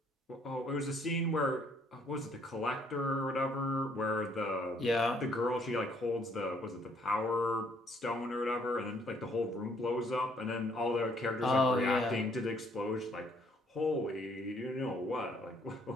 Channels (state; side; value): normal; both; correlation 0.65